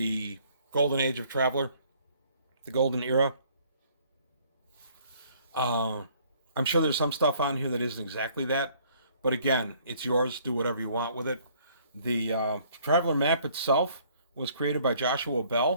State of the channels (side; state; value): both; inverted; correlation -0.60